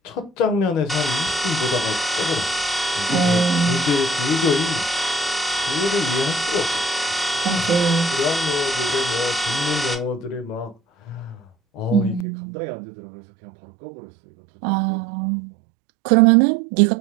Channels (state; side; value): drops out; left; at 12.2 s